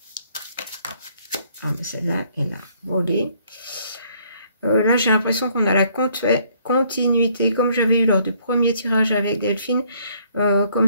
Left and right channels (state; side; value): inverted; both; correlation -0.65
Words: Ah, mais celle-là, elle a volé. Là, j'ai l'impression qu'on a la continuité, comme j'avais eu lors du premier tirage avec Delphine, comme